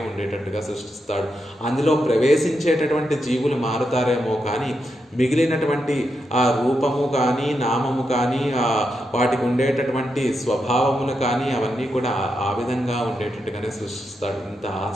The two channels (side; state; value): both; normal; correlation 0.84